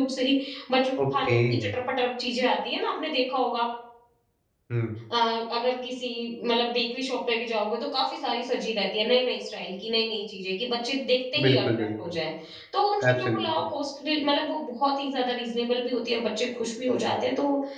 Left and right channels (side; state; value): both; identical; correlation 1.00